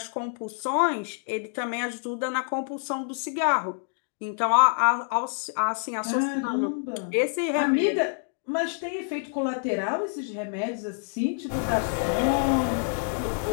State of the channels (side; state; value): right; silent; digital silence